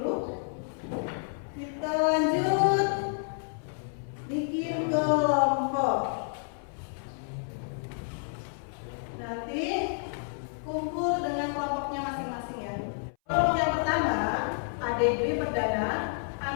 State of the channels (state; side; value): silent; right; 58 dB below the other